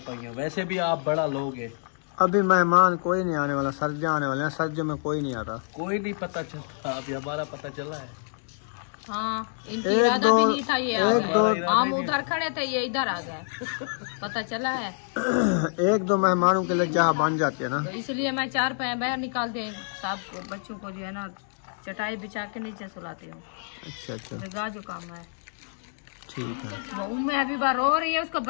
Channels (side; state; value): right; silent; digital silence